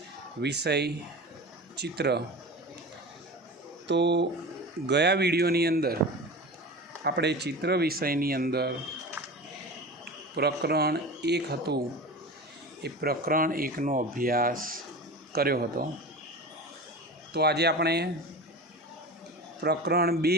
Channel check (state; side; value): normal; both; correlation 0.31